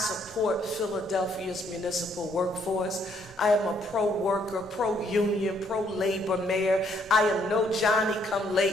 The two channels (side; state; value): both; normal; correlation 0.69